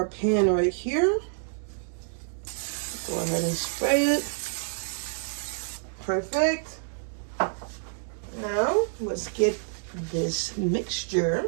pan right here. Go ahead and spray it. Perfect. Now, let's get this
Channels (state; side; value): silent; left; 59 dB below the other